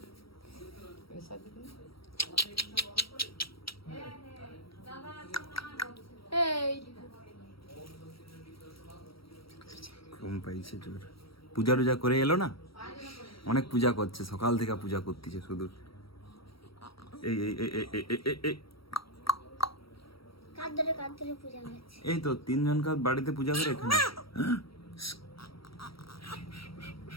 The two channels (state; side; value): late; right; 0.75 ms